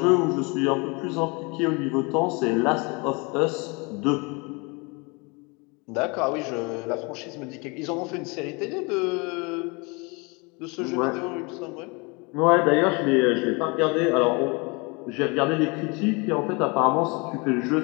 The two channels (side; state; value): right; quieter; 29.1 dB